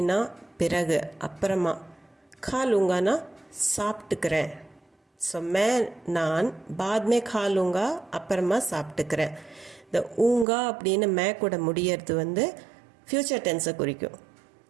பிறகு அப்புறமா, खा लूँगाனா சாப்பிட்டுக்கிறேன். ஸோ मैं நான் बाद में खा लूँगा அப்புறமா சாப்பிட்டுக்கிறேன். இந்த ஊங்கா அப்படின்னு மே கூட முடியறது ஃப்யூச்சர் டென்ஸை குறிக்கும்.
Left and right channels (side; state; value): left; drops out; at 10.5 s